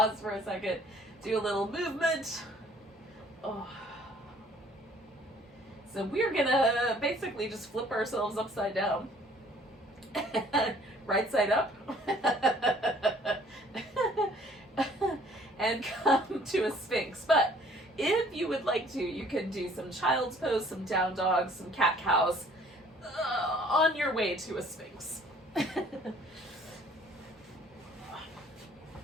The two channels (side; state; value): both; normal; correlation 0.57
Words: for a second, do a little movement. So we're going to basically just flip ourselves upside down. Right side up. And come to a Sphinx. But if you would like to, you can do some child's pose, some down dogs, some cat cows on your way to a Sphinx. Sounds